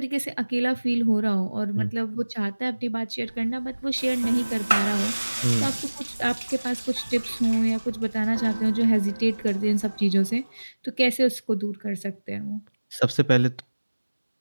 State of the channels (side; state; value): both; inverted; correlation -1.00